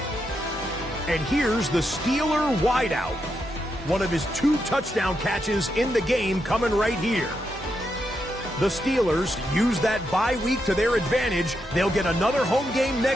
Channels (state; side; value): normal; both; correlation 0.83